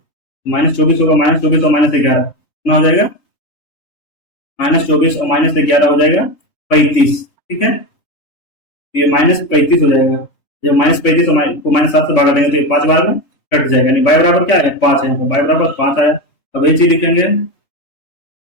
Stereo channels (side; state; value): right; late; 3.5 ms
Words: माइनस 24 होगा, माइनस 24 और माइनस 11 कितना हो जाएगा, माइनस 24 और माइनस 11 हो जाएगा 35। ठीक है, तो ये माइनस 35 हो जाएगा, जब माइनस 35 को माइनस 7 से भागा देंगे तो ये 5 बार में कट जाएगा, यानी y बराबर क्या है 5 है, यहाँ पर y बराबर 5 आया। अब यही चीज लिखेंगे,